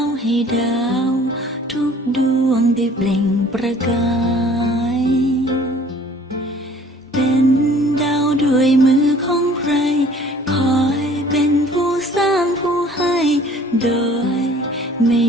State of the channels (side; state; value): both; normal; correlation 0.53